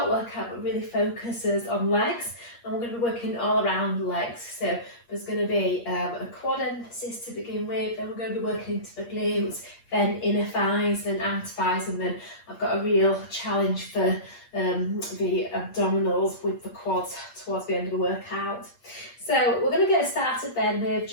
workout that really focuses on legs, and we're going to be working all around the legs. So there's going to be a quad emphasis to begin with, then we're going to be working into the glutes, then inner thighs, then outer thighs, and then I've got a real challenge for the abdominals with the quads towards the end of the workout. So we're going to get started then with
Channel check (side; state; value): right; late; 8.5 ms